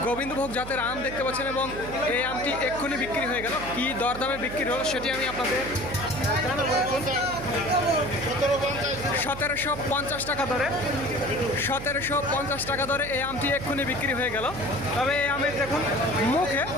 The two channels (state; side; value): noise; right; hum, 11 dB below the sound